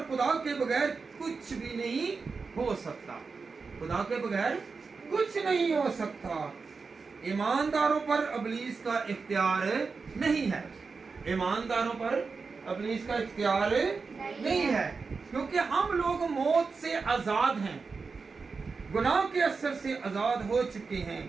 खुदा के बगैर कुछ भी नहीं हो सकता। खुदा के बगैर कुछ नहीं हो सकता। ईमानदारों पर इब्लीस का इख्तियार नहीं है। ईमानदारों पर इब्लीस का इख्तियार नहीं है, क्योंकि हम लोग मौत से आजाद हैं, गुनाह के असर से आजाद हो चुके हैं।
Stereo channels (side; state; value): left; quieter; 4.7 dB